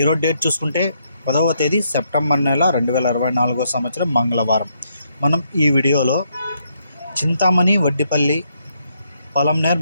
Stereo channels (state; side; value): inverted; both; correlation -0.75